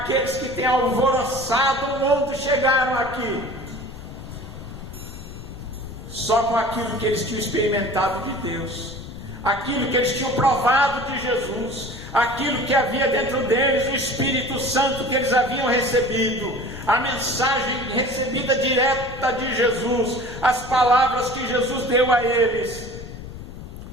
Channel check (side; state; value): left; noise; rumble, 12 dB below the sound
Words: que têm alvoroçado o mundo chegaram aqui. Só com aquilo que eles tinham experimentado de Deus, aquilo que eles tinham provado de Jesus, aquilo que havia dentro deles, o Espírito Santo que eles haviam recebido, a mensagem recebida direta de Jesus, as palavras que Jesus deu a eles,